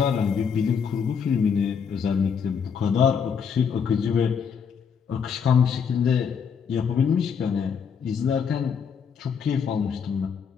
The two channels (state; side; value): quieter; right; 6.7 dB